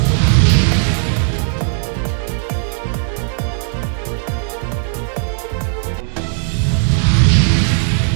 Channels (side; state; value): left; silent; digital silence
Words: दिनैनि दा हेडलाइन निउजआ एसेनोसै। गोजोन्थों।